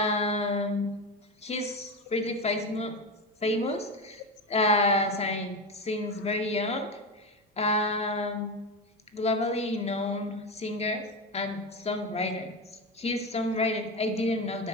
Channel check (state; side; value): normal; both; correlation 0.18